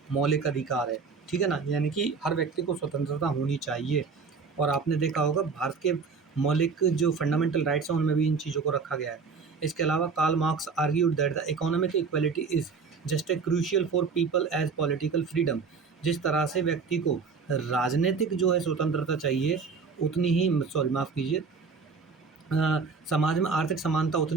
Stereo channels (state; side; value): quieter; left; 5.1 dB